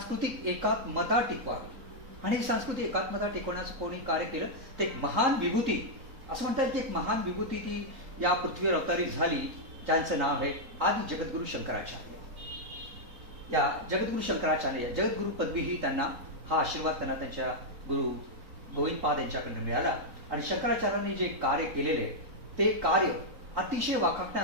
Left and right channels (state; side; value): late; left; 3.8 ms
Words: एकात्मता टिकवावी. आणि ही सांस्कृतिक एकात्मता टिकवण्याचं कोणी कार्य केलं ते एक महान विभूती, असं म्हणतात की एक महान विभूती ती या पृथ्वीवर अवतारित झाली, ज्यांचं नाव आहे आदि जगद्गुरु शंकराचार्य. या जगद्गुरु शंकराचार्य जगद्गुरु पदवी ही त्यांना, हा आशीर्वाद त्यांना त्यांच्या गुरु गोविंदपाद यांच्याकडून मिळाला. आणि शंकराचार्यांनी जे कार्य केलेले ते कार्य अतिशय